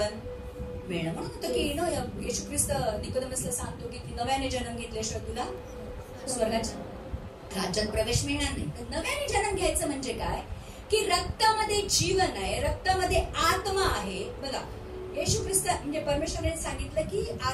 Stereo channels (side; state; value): both; identical; correlation 1.00